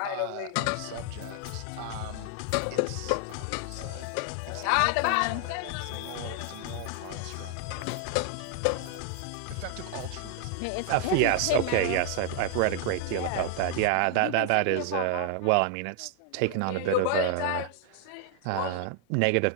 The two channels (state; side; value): different; both; correlation 0.00